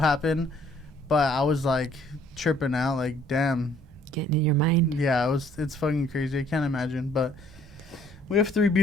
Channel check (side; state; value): both; normal; correlation 0.61